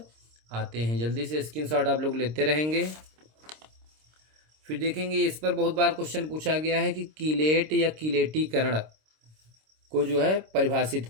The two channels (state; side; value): late; left; 26 ms